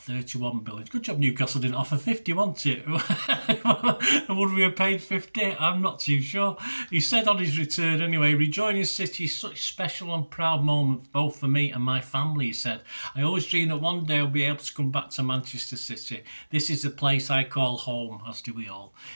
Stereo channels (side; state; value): both; inverted; correlation -1.00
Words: $31 million. Good job Newcastle didn't offer 50, wasn't it? Would we have paid 50? I'm not too sure. He said on his return anyway, "Rejoining City is such a special and proud moment both for me and my family," he said. "I always dreamed that one day I'll be able to come back to Manchester City. This is the place I call home, as do we all.